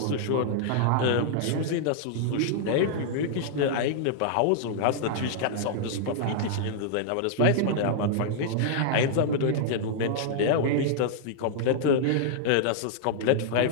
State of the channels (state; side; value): different; both; correlation -0.01